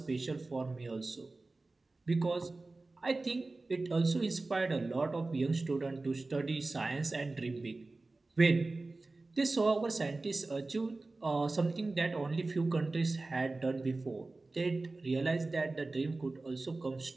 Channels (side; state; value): left; quieter; 3.3 dB